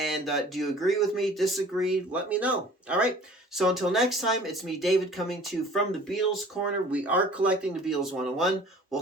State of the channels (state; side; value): normal; both; correlation 0.48